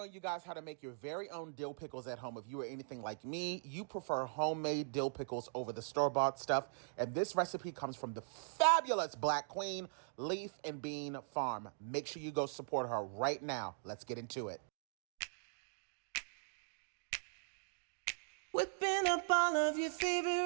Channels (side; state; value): left; silent; digital silence